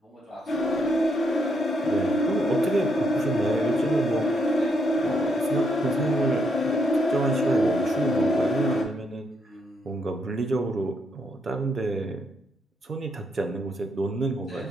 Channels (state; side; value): normal; both; correlation 0.76